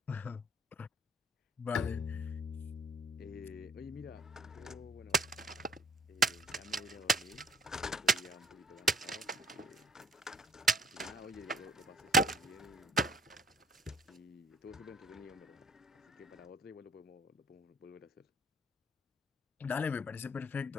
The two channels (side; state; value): both; normal; correlation 0.57